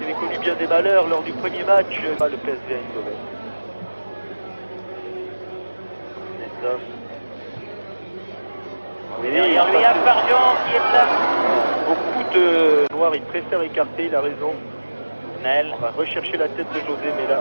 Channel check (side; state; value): both; inverted; correlation -1.00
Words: avait connu bien des malheurs lors du premier match, le PSV Eindhoven. Nestor. Et derrière lui, il y a Farjon qui est là. Beaucoup de noirs, il préfère écarter, il a raison. Nel. On va rechercher la tête de José, mais là,